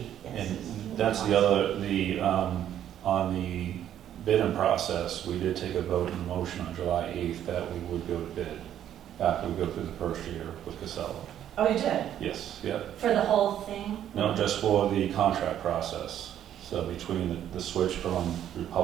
yes. And that's the other, on the bidding process, we did take a vote and motion on July 8th that we would go to bid after we go through the first year with Casella. Oh, you did? Yes, yep. For the whole thing? No, just for the contract process. So between the switch from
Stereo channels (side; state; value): left; quieter; 10.7 dB